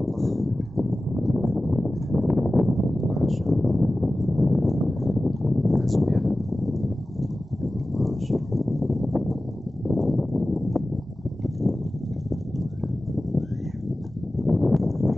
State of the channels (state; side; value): normal; both; correlation 0.96